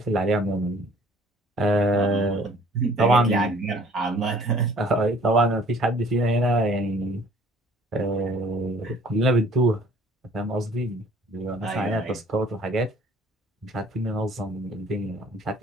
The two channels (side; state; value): both; normal; correlation 0.55